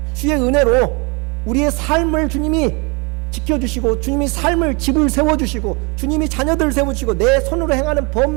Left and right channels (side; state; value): left; quieter; 29.9 dB